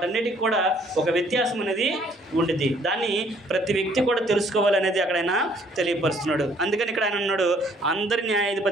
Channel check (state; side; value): normal; both; correlation 0.62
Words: కూడా ఒక వ్యత్యాసం అనేది ఉంటుంది. దాన్ని ప్రతి వ్యక్తి కూడా తెలుసుకోవాలనేది అక్కడైనా తెలియపరుస్తున్నాడు. అందుకని ఇక్కడ ఆయన అన్నాడు, అందరి